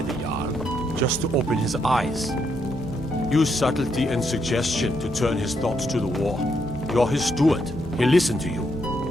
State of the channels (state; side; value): normal; both; correlation 0.77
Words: the Jarl, just to open his eyes. Use subtlety and suggestion to turn his thoughts to the war. You're his steward. He'll listen to you.